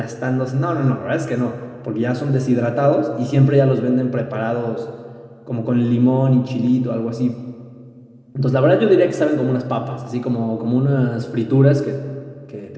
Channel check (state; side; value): identical; both; correlation 1.00